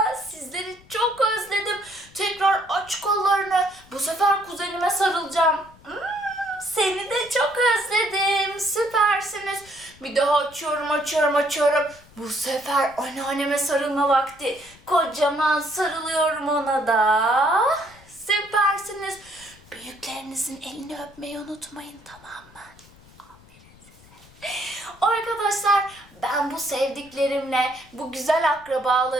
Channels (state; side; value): noise; left; rumble, 26 dB below the sound